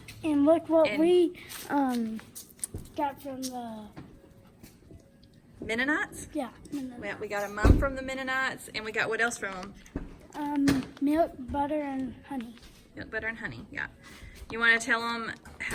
And look what And- we got from the Mennonites. We got a mum from the Mennonites, and we got what else from them? Milk, butter, and honey. Milk, butter, and honey. Yeah. You want to tell them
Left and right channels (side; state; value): both; identical; correlation 1.00